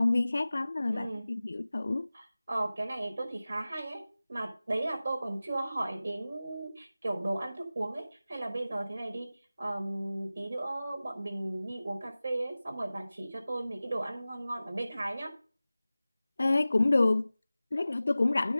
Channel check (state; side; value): inverted; both; correlation -0.97